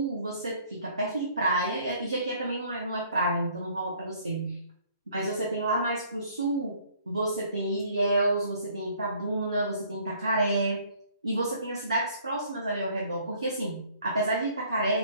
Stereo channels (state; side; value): inverted; both; correlation -0.59